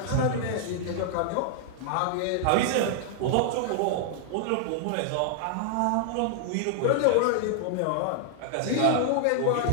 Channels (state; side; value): different; both; correlation 0.00